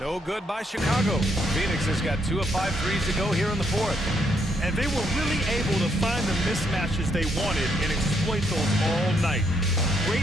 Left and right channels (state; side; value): normal; both; correlation 0.74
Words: good by Chicago. Phoenix has got 2 of 5 threes to go here in the fourth. And they were really able to find the mismatches they wanted and exploit those all night.